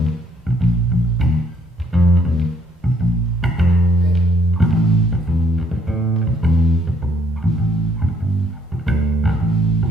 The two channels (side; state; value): both; normal; correlation 0.66